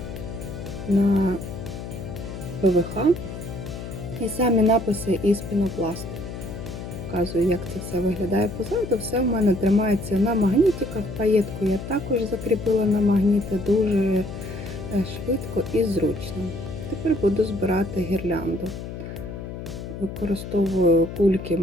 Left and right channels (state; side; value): noise; left; hum, 9 dB below the sound